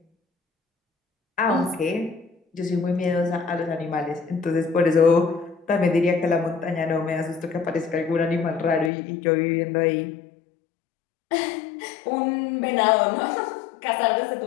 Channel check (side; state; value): right; drops out; at 8.9 s